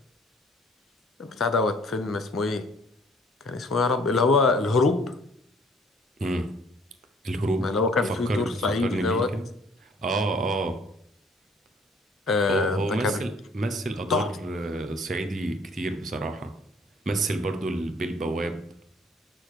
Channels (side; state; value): both; normal; correlation 0.58